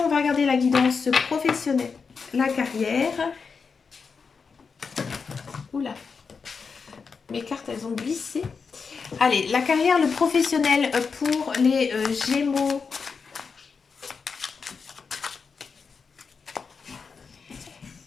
va regarder la guidance professionnelle. La carrière. Oula. Mes cartes, elles ont glissé. Allez, la carrière, le professionnel pour les Gémeaux.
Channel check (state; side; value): quieter; right; 5.3 dB